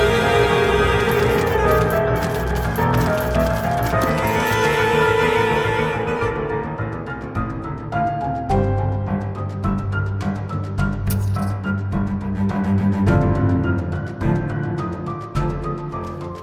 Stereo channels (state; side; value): identical; both; correlation 1.00